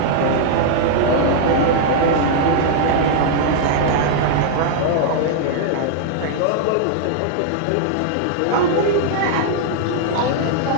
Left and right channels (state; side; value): different; both; correlation -0.01